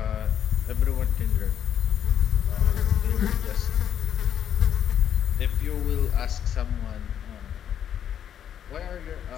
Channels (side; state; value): right; quieter; 9.4 dB